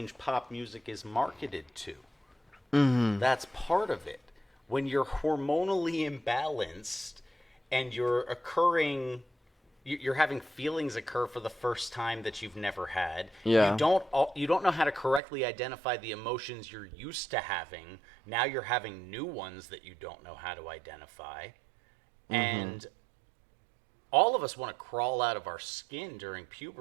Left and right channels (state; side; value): drops out; left; at 15.2 s